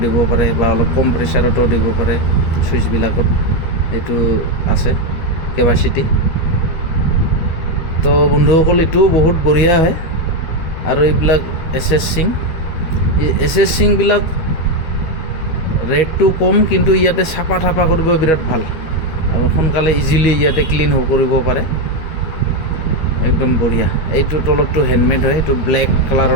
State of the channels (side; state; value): right; late; 13 ms